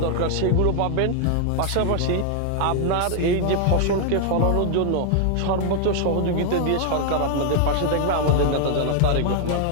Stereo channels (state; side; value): different; both; correlation 0.00